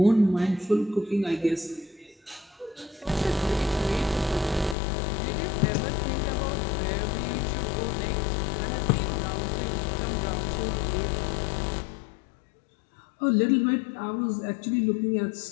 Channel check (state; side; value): drops out; right; at 4.8 s